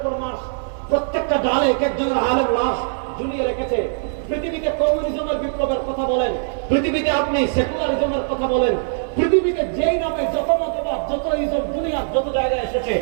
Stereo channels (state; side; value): silent; left; 64 dB below the other